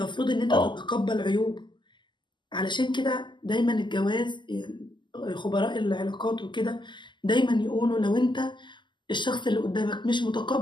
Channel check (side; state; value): right; late; 0.22 ms